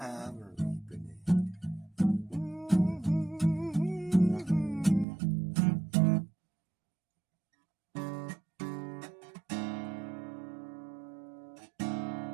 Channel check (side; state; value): left; drops out; at 5.1 s